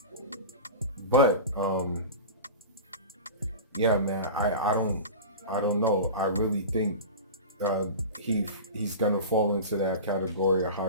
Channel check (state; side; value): inverted; both; correlation -0.30